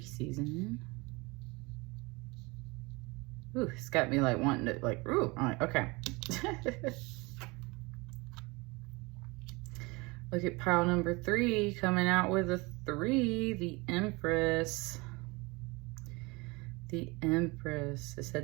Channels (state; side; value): quieter; left; 25.4 dB